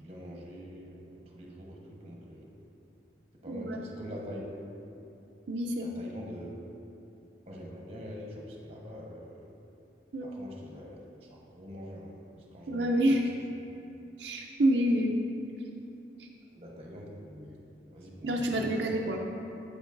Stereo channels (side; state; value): both; normal; correlation 0.72